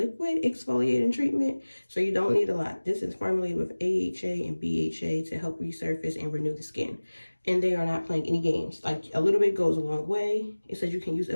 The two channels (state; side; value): inverted; both; correlation -1.00